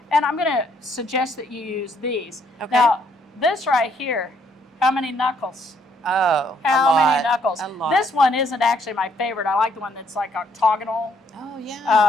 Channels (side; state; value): both; normal; correlation 0.68